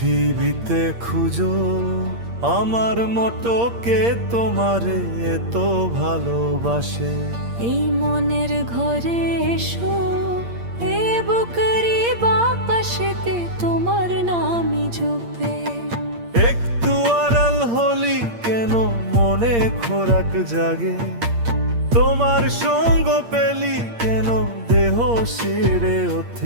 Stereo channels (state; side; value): late; left; 8.6 ms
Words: খুঁজো আমার মতো কে তোমারে এত ভালোবাসে। এই মনের ঘরে এসো, এ বুকেরই বাপাশেতে তোমার নামই জপে। একটু আড়াল হলি কেন মনে খোরাক জাগে, তোমার সঙ্গ পেলি কেন দেহ শিরে